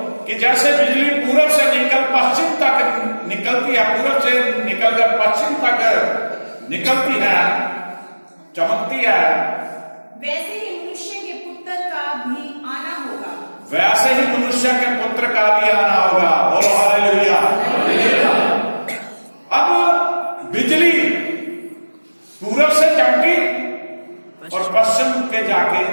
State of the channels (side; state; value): both; inverted; correlation -1.00